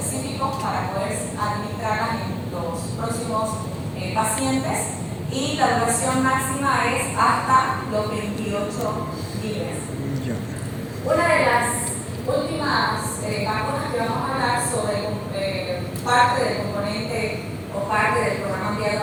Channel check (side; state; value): both; identical; correlation 1.00